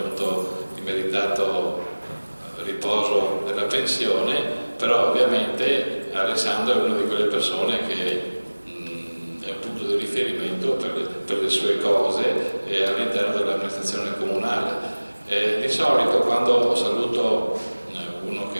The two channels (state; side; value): inverted; both; correlation -1.00